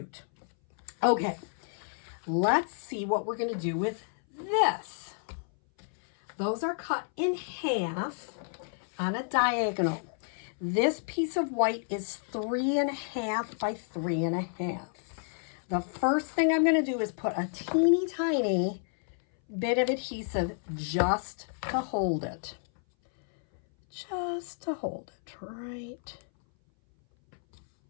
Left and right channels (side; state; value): right; silent; 57 dB below the other